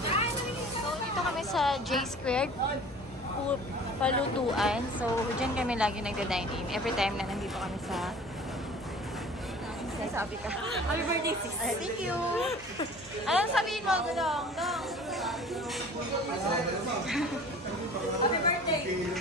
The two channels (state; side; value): noise; left; hum, 23 dB below the sound